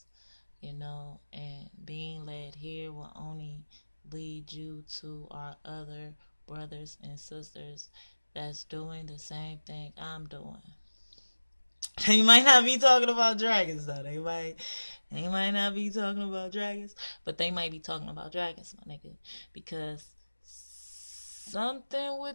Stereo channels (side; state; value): both; inverted; correlation -1.00